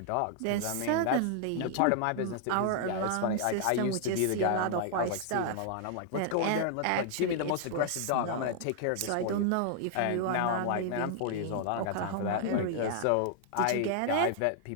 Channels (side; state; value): both; different; correlation 0.00